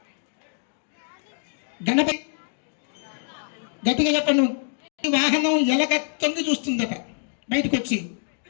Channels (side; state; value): right; silent; digital silence